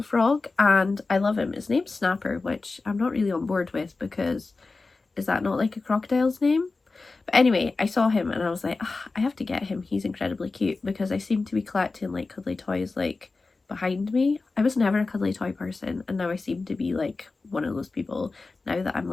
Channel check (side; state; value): right; quieter; 3.8 dB